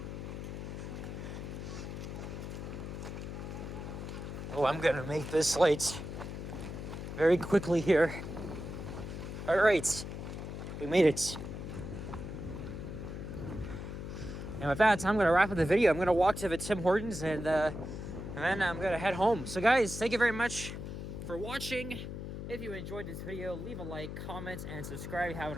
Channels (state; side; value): noise; left; hum, 7 dB below the sound